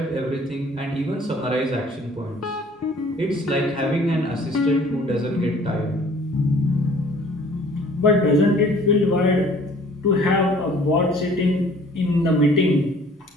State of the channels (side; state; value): both; normal; correlation 0.54